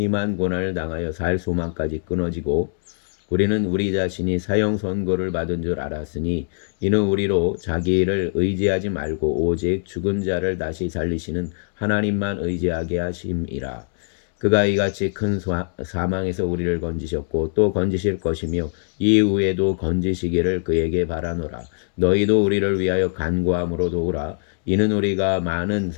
고난을 당하여 살 소망까지 끊어지고 우리는 우리 자신이 사형 선고를 받은 줄 알았으니 이는 우리로 자기 일을 의지하지 말고 오직 죽은 자를 다시 살리시는 하나님만 의지하게 하심이라. 그가 이같이 큰 사망에서 우리를 건지셨고 또 건지실 것이며 이후에도 건지시기를 그에게 바라노라. 너희도 우리를 위하여 간구함으로 도우라. 이는 우리가 많은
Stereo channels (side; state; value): right; silent; digital silence